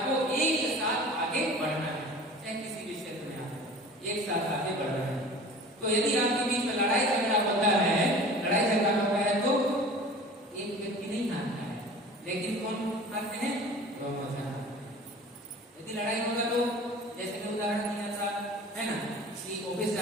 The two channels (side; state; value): both; normal; correlation 0.42